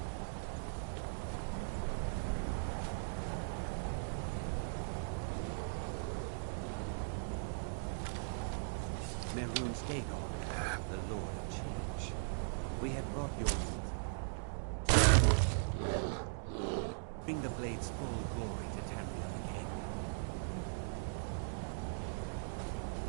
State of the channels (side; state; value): left; silent; digital silence